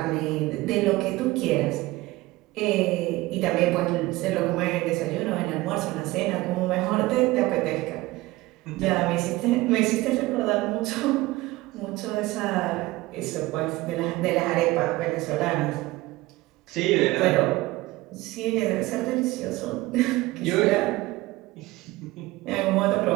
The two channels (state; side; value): quieter; left; 19.6 dB